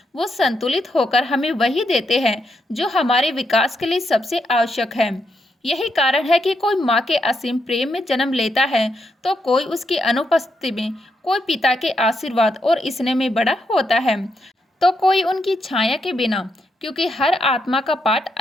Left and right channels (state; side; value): normal; both; correlation 0.80